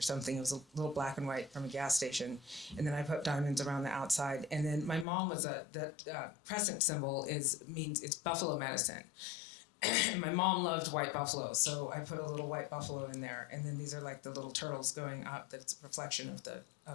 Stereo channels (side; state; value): right; drops out; at 5.1 s